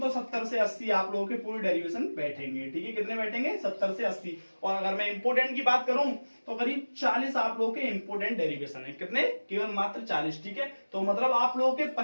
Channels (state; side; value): inverted; both; correlation -1.00